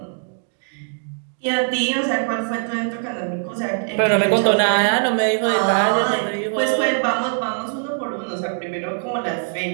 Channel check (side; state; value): left; silent; 58 dB below the other